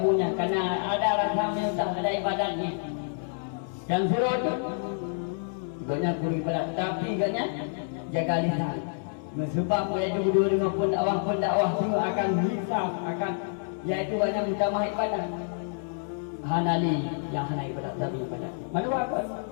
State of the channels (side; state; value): right; silent; 59 dB below the other